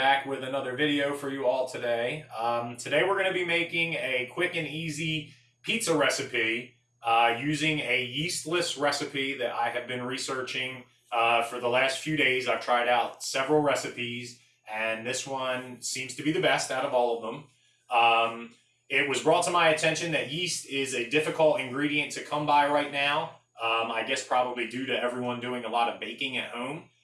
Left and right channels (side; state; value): both; identical; correlation 1.00